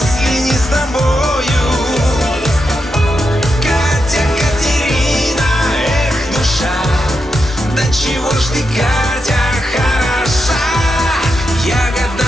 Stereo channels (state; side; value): normal; both; correlation 0.86